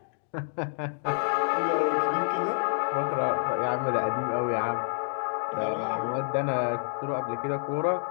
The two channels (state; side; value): silent; right; digital silence